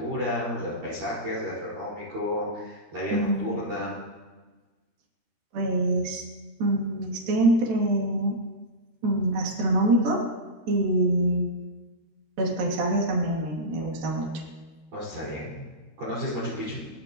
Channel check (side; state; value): left; late; 14 ms